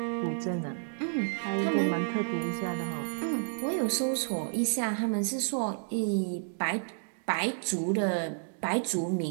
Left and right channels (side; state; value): left; silent; digital silence